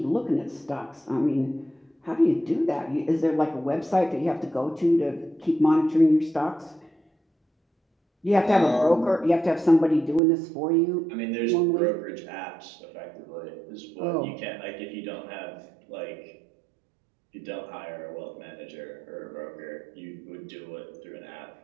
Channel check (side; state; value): left; drops out; at 10.2 s